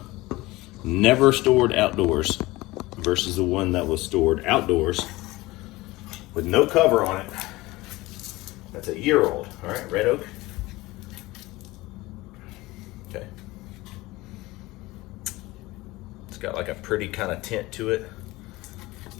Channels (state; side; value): quieter; right; 20.0 dB